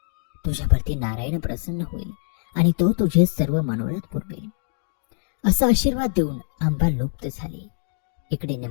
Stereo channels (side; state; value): right; silent; 62 dB below the other